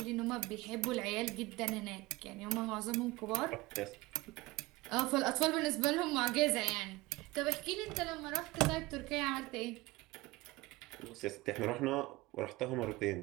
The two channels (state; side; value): quieter; left; 20.9 dB